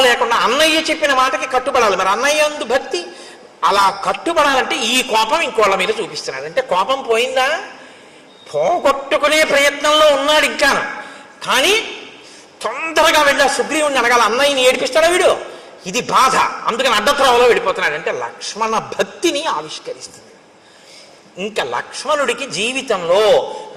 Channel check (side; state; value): both; identical; correlation 1.00